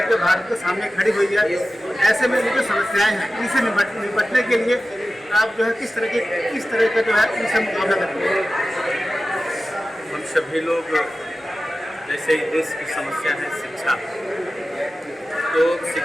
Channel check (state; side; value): normal; both; correlation 0.94